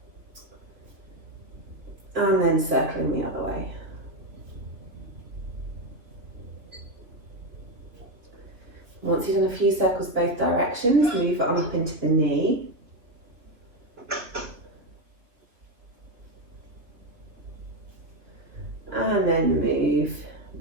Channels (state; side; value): late; left; 3.1 ms